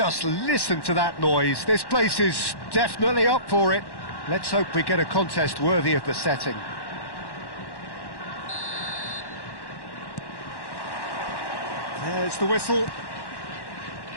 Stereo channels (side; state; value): right; late; 1.1 ms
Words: listen to that noise. This place is definitely up for it. Let's hope we get a contest worthy of the setting. There's the whistle.